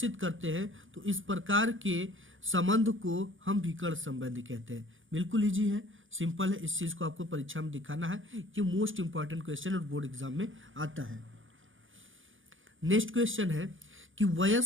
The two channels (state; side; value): late; left; 0.57 ms